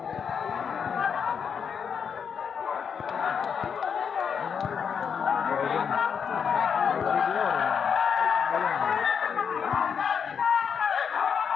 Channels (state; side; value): quieter; right; 6.9 dB